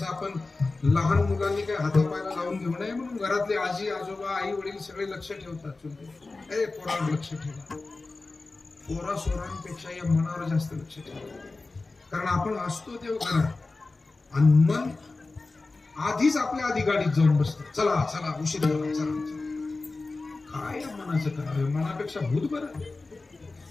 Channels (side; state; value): right; quieter; 3.5 dB